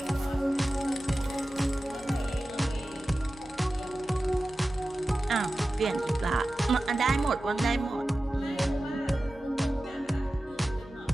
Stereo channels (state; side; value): normal; both; correlation 0.94